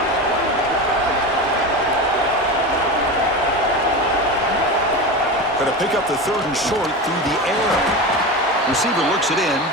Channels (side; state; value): both; normal; correlation 0.24